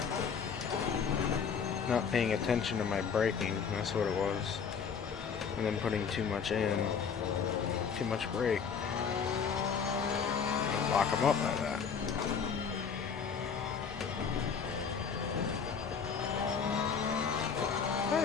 Not paying attention to my braking, that's what it was. And then putting too much in. Too much brake. Lock them up like that. Oh,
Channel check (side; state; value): right; quieter; 6.4 dB